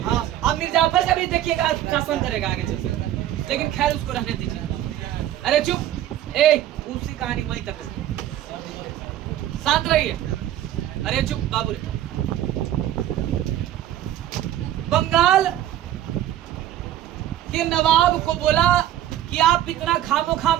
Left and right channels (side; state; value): left; quieter; 12.4 dB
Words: हाँ, अब मिर्जाफर का भी देखिएगा शासन करेगा आगे चलकर, लेकिन खैर उसको रहने दीजिए। अरे चुप, उसी कहानी वहीं तक, शांत रहिए। अरे चुप बाबू रे। बंगाल के नवाब को बोला कि आप इतना खामोखा